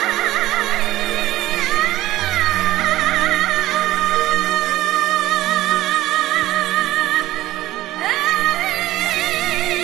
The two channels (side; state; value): left; quieter; 16.0 dB